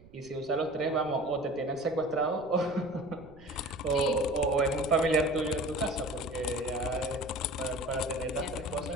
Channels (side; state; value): right; noise; rumble, 22 dB below the sound